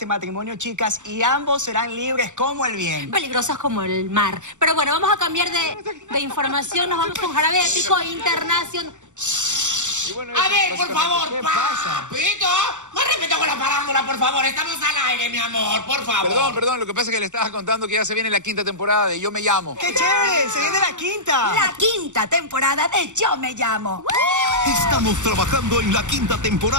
matrimonio, chicas, y ambos serán libres como el viento. Peligrosos como el mar. Pero bueno, vamos a cambiar de información. Nos vamos con Jarabe Épico Internacional. Bueno, a ver, por favor, ¿qué pasa? Papito, más respeto con la parándula, por favor. Estamos al aire, mi amor, por favor. Perdón, lo que pasa es que le estaba contando que ya se viene la 5ª temporada de Yo Me Llamo. ¡Qué chévere! ¡Se viene la 5ª! La 5ª temporada de Yo Me Llamo. Estamos trabajando en la 5ª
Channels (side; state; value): left; late; 0.85 ms